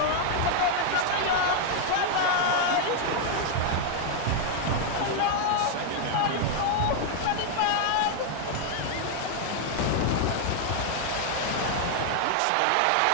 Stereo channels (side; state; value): both; different; correlation 0.00